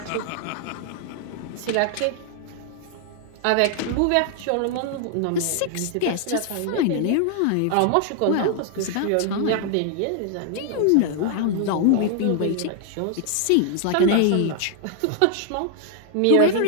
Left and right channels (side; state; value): both; different; correlation 0.00